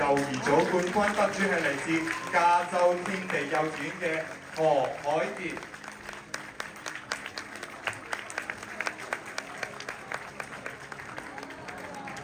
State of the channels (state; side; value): identical; both; correlation 1.00